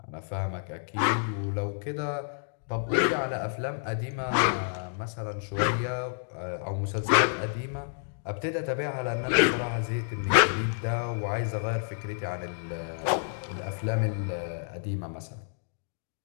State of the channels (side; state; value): right; silent; digital silence